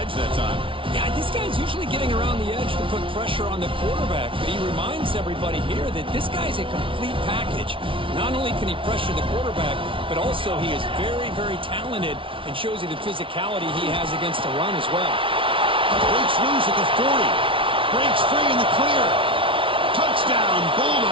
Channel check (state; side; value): late; left; 0.25 ms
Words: that time. Yeah, this guy's usually getting around the edge to put pressure on the quarterback, but he reminds everybody here that this guy's a complete package. Not only can he pressure the quarterback, but also he is very, very talented and shows you the physicality he has against the run as well. Breaks loose at the 40. Breaks free in the clear. Touchdown,